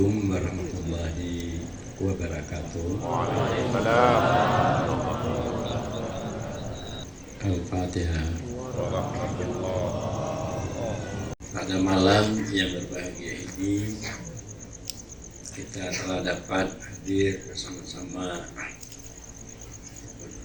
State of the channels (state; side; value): identical; both; correlation 1.00